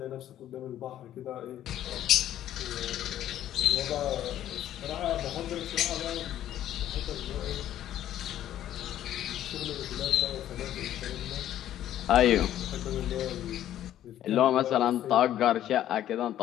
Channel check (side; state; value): right; quieter; 12.0 dB